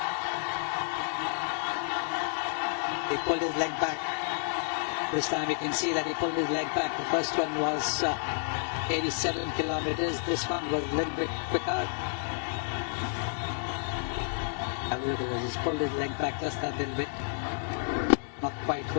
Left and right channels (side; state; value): right; silent; 57 dB below the other